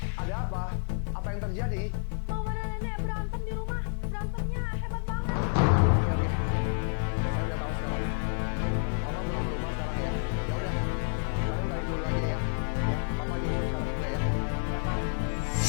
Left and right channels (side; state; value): right; silent; 57 dB below the other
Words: Ada apa? Apa yang terjadi? Mama dan nenek berantem di rumah. Berantemnya hebat banget. Oke. Saya udah tahu sekarang. Papa pulang ke rumah sekarang ya. Ya udah. Kalian balik dulu aja ya. Ya, Papa nyusul sekarang juga ya. Iya Pak.